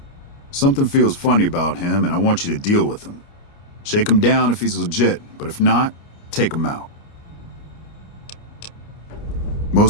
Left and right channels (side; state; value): right; late; 29 ms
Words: Something feels funny about him, and I want you to deal with him. Shake him down if he's legit, but if not, take him out.